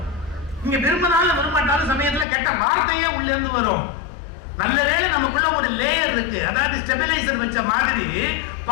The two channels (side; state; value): right; drops out; at 2.2 s